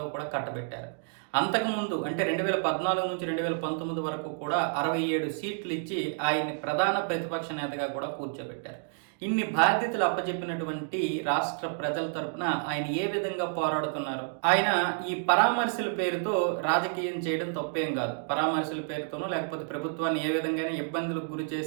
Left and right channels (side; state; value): left; silent; 58 dB below the other